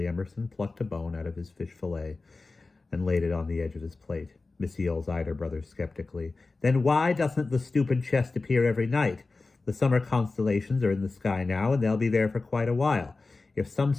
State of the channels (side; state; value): right; quieter; 3.6 dB